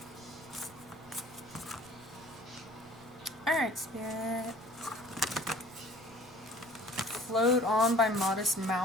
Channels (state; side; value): noise; right; rumble, 25 dB below the sound